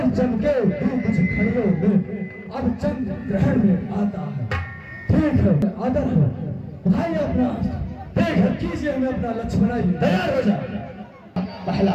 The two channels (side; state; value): both; identical; correlation 1.00